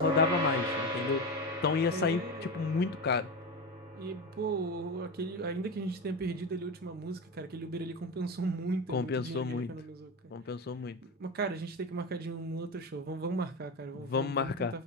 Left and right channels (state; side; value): normal; both; correlation 0.20